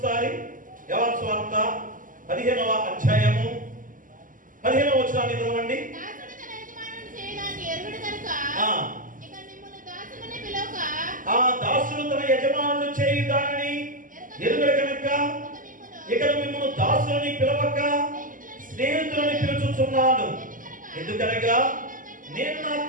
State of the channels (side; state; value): left; late; 0.39 ms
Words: యోహాను సువార్త 15వ అధ్యాయము 15వ వచనాన్ని చదవండి. దాసుడు తన యజమానుడు చేయు దానిని ఎరుగడు కనుక ఇక మిమ్మల్ని దాసులని పిలవక స్నేహితులని పిలుచుచున్నాను. ఎందుకనగా నేను నా